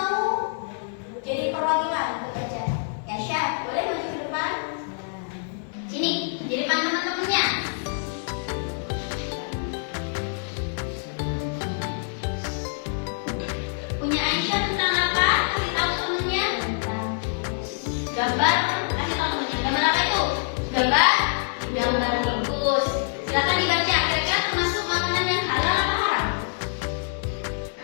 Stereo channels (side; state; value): right; silent; 61 dB below the other